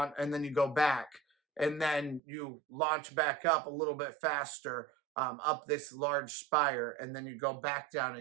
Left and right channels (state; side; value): drops out; left; at 2.2 s